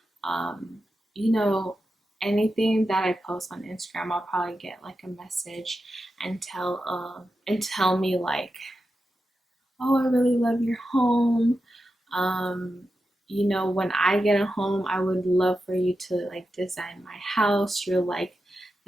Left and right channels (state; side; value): normal; both; correlation 0.90